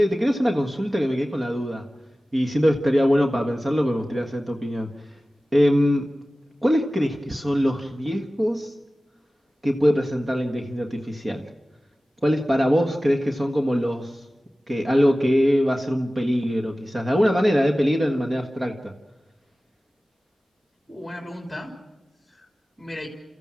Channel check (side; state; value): both; normal; correlation 0.96